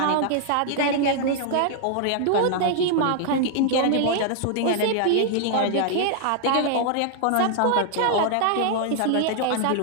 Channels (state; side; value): different; both; correlation 0.00